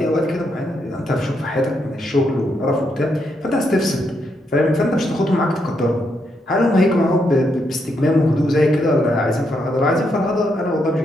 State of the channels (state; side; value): normal; both; correlation 0.79